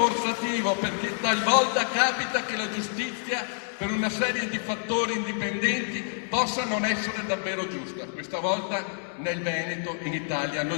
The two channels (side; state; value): right; silent; digital silence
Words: perché talvolta capita che la giustizia per una serie di fattori indipendenti possa non essere davvero giusta. Questa volta nel Veneto, in Italia,